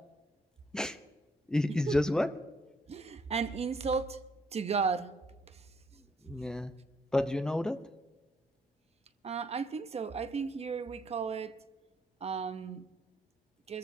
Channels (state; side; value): normal; both; correlation 0.70